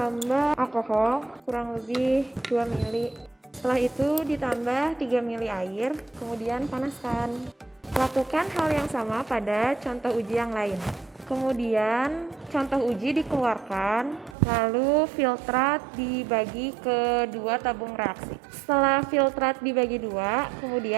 alkohol kurang lebih 2 ml. Setelah itu ditambah 3 ml air, kemudian panaskan. Lakukan hal yang sama pada contoh uji yang lain. Kemudian contoh uji dikeluarkan, lalu filtrat dibagi ke 2 tabung reaksi. Setelah filtrat dibagi 2,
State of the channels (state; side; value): drops out; left; at 14.4 s